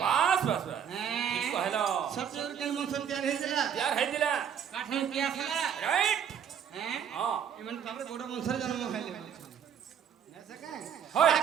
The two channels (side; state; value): left; quieter; 8.3 dB